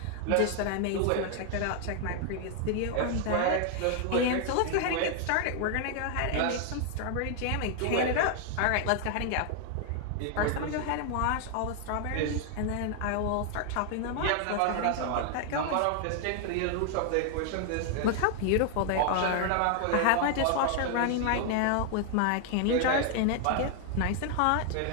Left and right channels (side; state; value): both; different; correlation 0.00